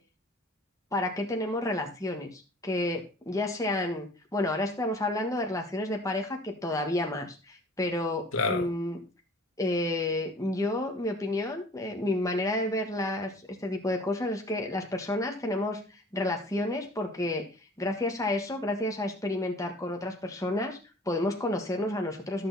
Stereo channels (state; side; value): normal; both; correlation 0.48